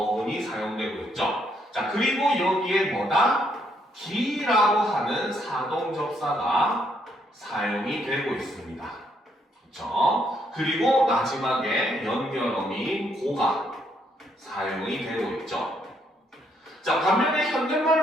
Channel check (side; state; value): both; normal; correlation 0.73